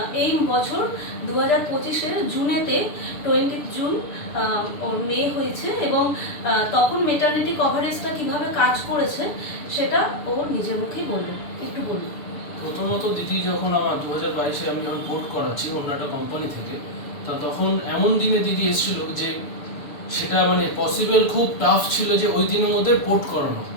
এই বছর 2025-এর জুনেতে 20 জুন ওর মেয়ে হয়েছে, এবং তখন মেটারনিটি কভারেজটা কিভাবে কাজ করেছে সেটা ও নিজের মুখেই বলবে। একটু বলুন। প্রথমত দিদি, যখন আমার 2022-এ আমি যখন পোর্ট করাচ্ছি অন্য একটা কোম্পানি থেকে, তা তখন এমন দিনে দিদি এসেছিল যে সেটা মানে পসিবল খুব টাফ ছিল যে ওই দিনের মধ্যে পোর্ট করানো।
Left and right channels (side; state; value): right; late; 6.8 ms